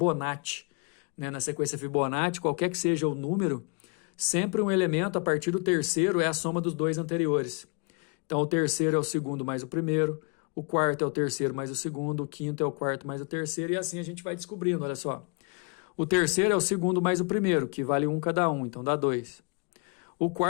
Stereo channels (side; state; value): right; quieter; 33.8 dB